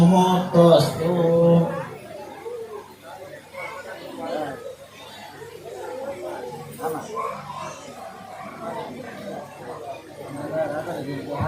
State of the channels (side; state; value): both; identical; correlation 1.00